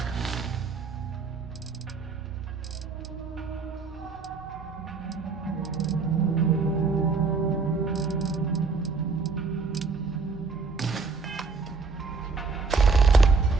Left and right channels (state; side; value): quieter; left; 4.5 dB